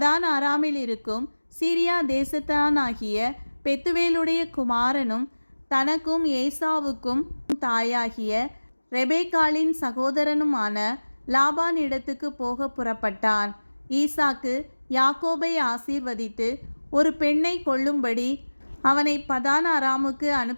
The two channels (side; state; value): both; inverted; correlation -1.00